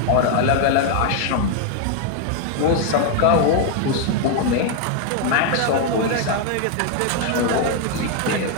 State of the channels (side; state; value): both; different; correlation 0.00